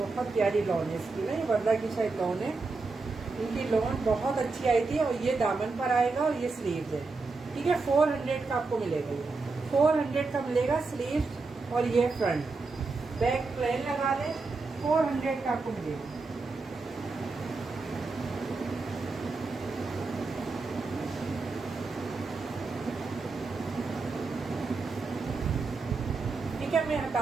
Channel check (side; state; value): left; quieter; 3.9 dB